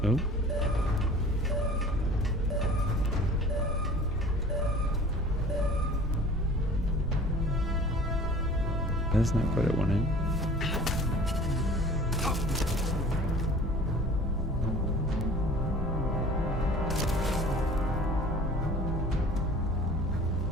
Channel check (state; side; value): normal; both; correlation 0.45